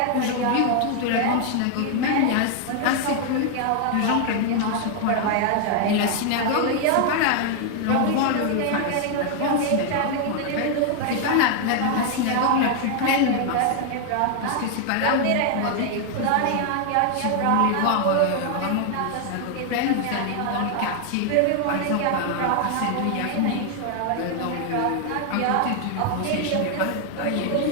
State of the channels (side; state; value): both; different; correlation 0.00